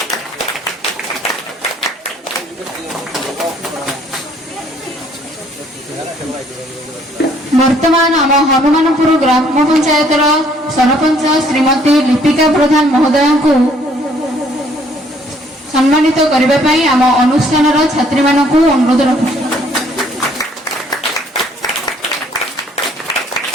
वर्तमान आम हनुमानपुर ग्राम पंचायतर सरपंच श्रीमती लिपिका प्रधान महोदय को सम्मानित करने आम अनुष्ठान छात्री मानक अनुरोध रखुछु।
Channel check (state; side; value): normal; both; correlation 0.62